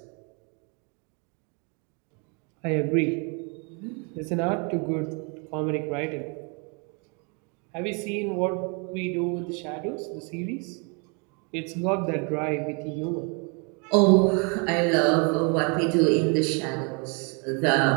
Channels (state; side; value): quieter; left; 34.7 dB